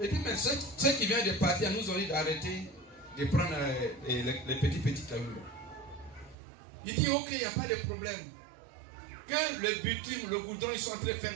dit, mais ceux qui viennent de partir nous ont dit d'arrêter de prendre les petits cailloux. Il dit, ok, il n'y a pas de problème. Que le bitume, le goudron, ils sont en train de faire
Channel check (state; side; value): drops out; left; at 6.4 s